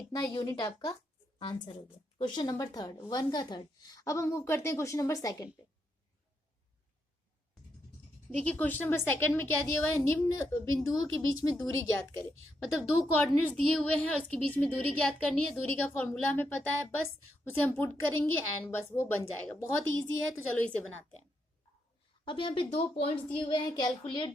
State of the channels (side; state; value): both; normal; correlation 0.81